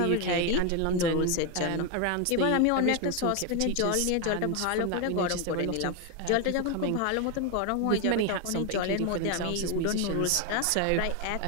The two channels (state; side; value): different; both; correlation 0.01